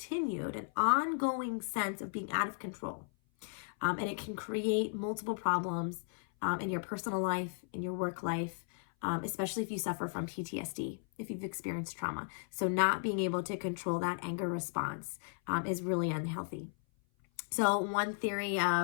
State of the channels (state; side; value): silent; right; 54 dB below the other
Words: and ongoing sense of being out of control. And it can create multiple problems in your personal life, in your work life, especially if you suffer from PTSD, if you've experienced trauma. So not being able to control that anger response is really unhealthy. So one theory